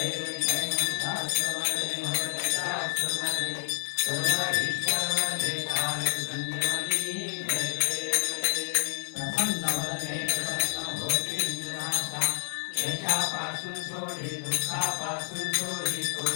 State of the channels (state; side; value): silent; right; 59 dB below the other